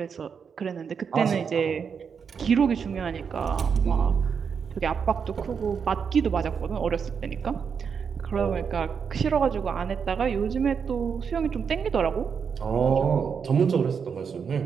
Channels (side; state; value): left; quieter; 6.5 dB